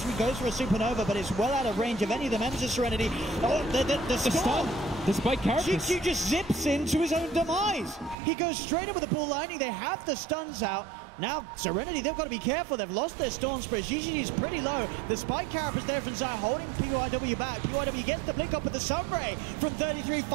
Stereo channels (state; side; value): drops out; left; at 8.2 s